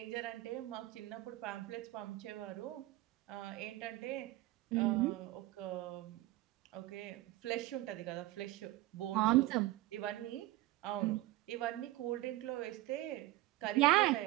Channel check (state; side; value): quieter; left; 17.4 dB